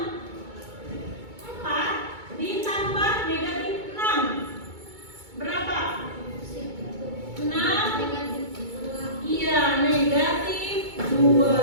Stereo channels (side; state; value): left; late; 2.2 ms